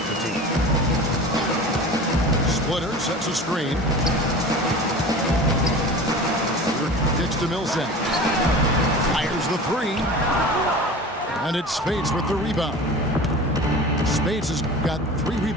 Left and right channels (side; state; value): both; normal; correlation 0.36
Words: the team. Splitter sets a screen. Kicks to Millsap. Fires the 3. And it's Spates with the rebound. Spates has got 3